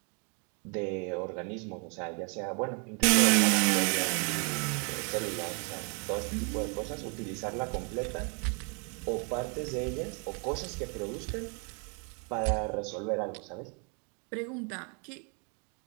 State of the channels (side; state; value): left; quieter; 38.1 dB